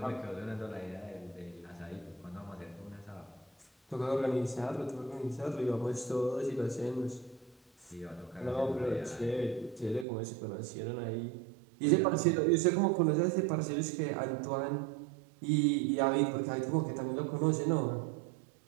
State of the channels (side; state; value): left; drops out; at 10.1 s